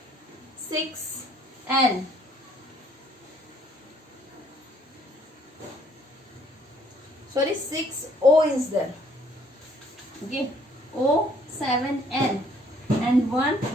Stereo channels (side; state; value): both; normal; correlation 0.63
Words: 6, N. Sorry, 6, O is there. Okay, O, 7, N. And 1,